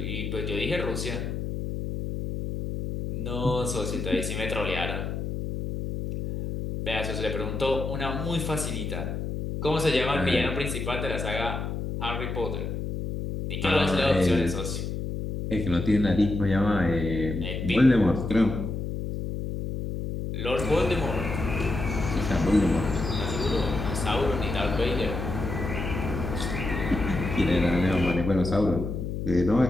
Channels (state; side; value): noise; left; hum, 4 dB below the sound